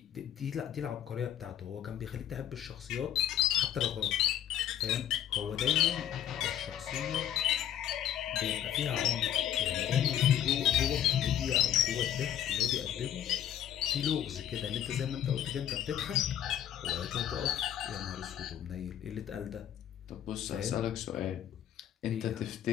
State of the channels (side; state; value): right; quieter; 10.6 dB